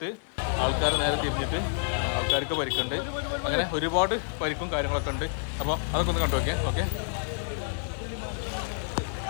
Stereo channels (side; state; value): right; silent; digital silence